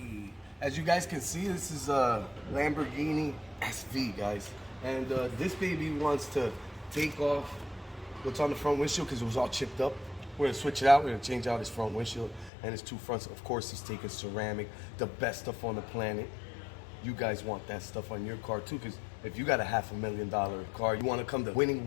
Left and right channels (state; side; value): drops out; right; at 12.5 s